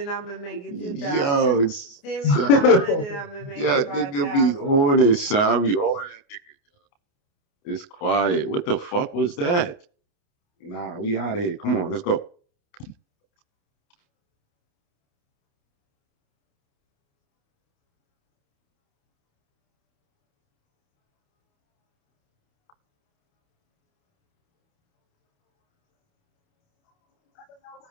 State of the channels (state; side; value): late; right; 29 ms